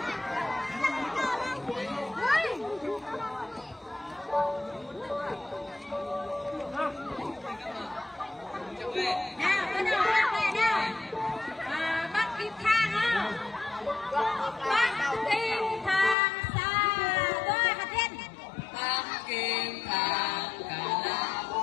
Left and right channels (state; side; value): drops out; right; at 16.2 s